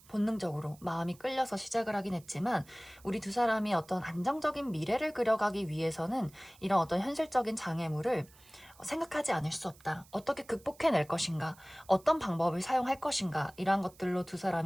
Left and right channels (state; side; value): noise; right; hiss, 25 dB below the sound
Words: 본능적으로 마음이 끌려서 시작을 하긴 했지만 우리 두 사람이 어떤 안정적인 미래를 그려가기 위해서는 이런 어떤 현실적인 장애물을 생각하지 않을 수 없다. 어떻게 극복해낼 것인가? 어떤 방법을 사용할 것인가? 이러한 것들로 두